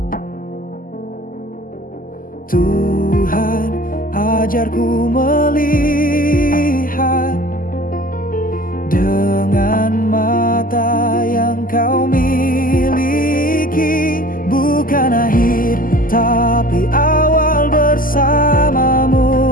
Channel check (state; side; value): late; right; 0.41 ms